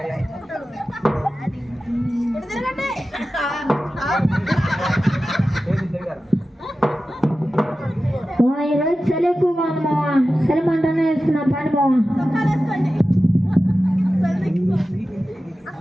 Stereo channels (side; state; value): both; normal; correlation 0.94